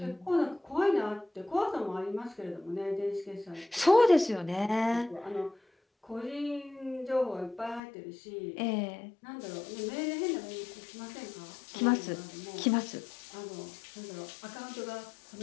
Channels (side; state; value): right; drops out; at 7.8 s